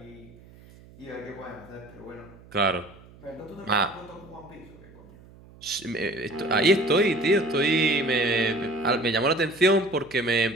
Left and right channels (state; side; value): noise; right; hum, 23 dB below the sound